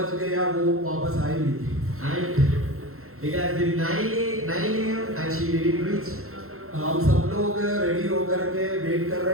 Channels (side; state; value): left; late; 0.62 ms